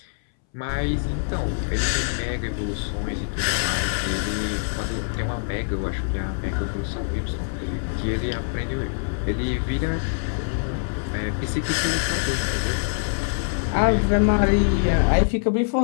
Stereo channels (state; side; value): silent; right; 62 dB below the other